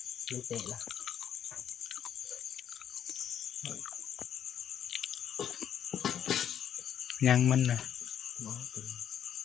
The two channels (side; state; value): right; quieter; 9.4 dB